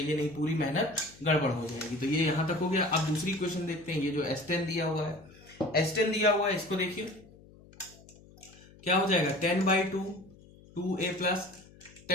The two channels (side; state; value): left; noise; hum, 23 dB below the sound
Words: नहीं पूरी मेहनत गड़बड़ हो जाएगी। तो ये यहां तक हो गया। अब दूसरी इक्वेशन देखते हैं। ये जो S10 दिया हुआ है, S10 दिया हुआ है, इसको देखिए क्या हो जाएगा 10/2 2a plus